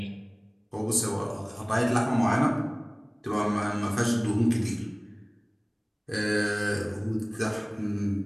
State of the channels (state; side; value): identical; both; correlation 1.00